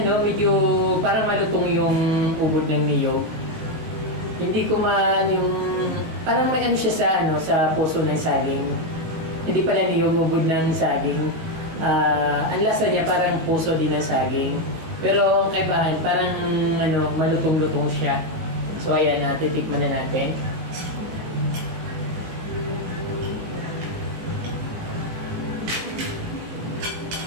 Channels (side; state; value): left; late; 19 ms